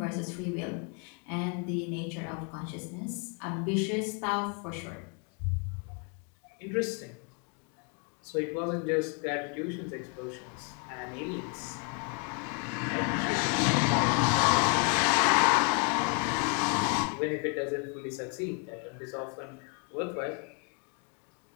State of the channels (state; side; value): quieter; right; 36.5 dB